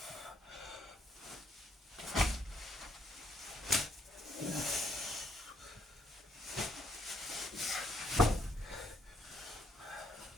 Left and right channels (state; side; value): normal; both; correlation 0.72